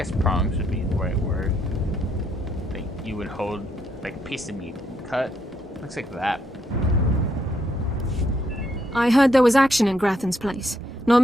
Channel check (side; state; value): both; normal; correlation 0.75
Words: prongs would be the right word. Like you would hold like a piece of meat and cut. Looks like that. I heard there was action in Grathan's place. Not